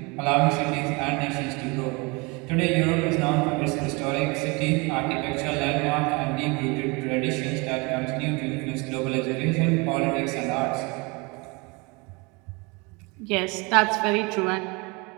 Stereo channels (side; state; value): left; quieter; 27.7 dB